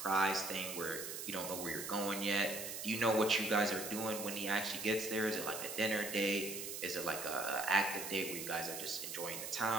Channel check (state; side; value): noise; right; hiss, 6 dB below the sound